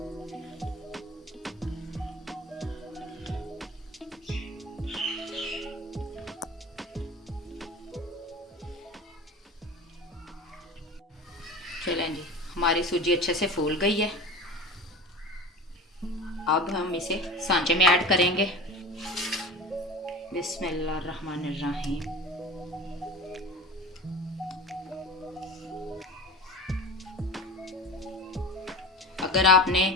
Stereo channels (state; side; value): normal; both; correlation 0.34